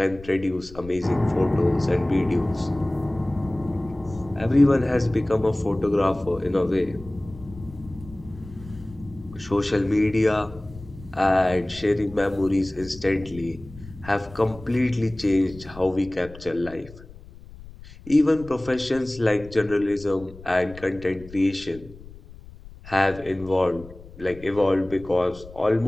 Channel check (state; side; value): noise; left; rumble, 18 dB below the sound